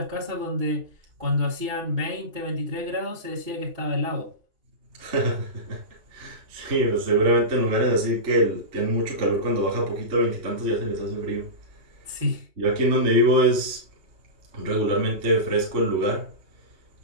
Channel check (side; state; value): left; late; 3.5 ms